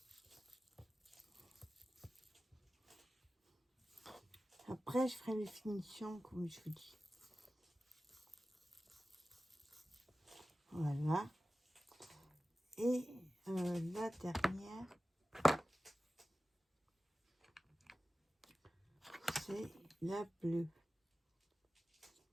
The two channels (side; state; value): both; normal; correlation 0.95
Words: où. Après, je ferai les finitions comme je vous dis. Voilà. Et la dernière, c'est la bleue.